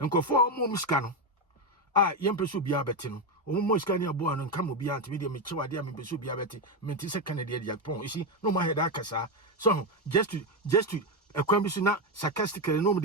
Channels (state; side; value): normal; both; correlation 0.09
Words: go for more muscano. Young person be a betting. Almost can you born and come be anti media mature dear me be a betting, mentis a Canadian Japon. You see, no my head akasa. So just to a question not sarcastically